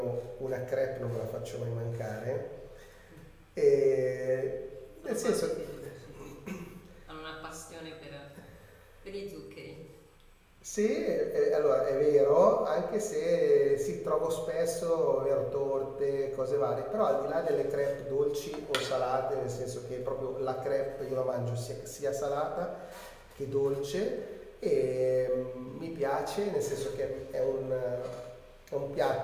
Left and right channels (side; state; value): both; identical; correlation 1.00